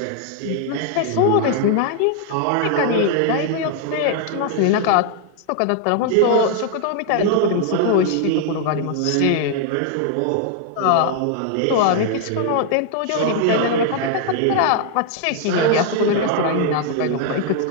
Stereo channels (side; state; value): both; different; correlation 0.00